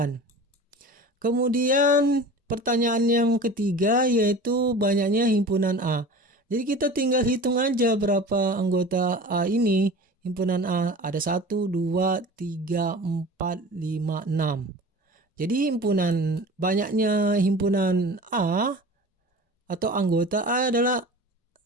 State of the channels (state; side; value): normal; both; correlation 0.38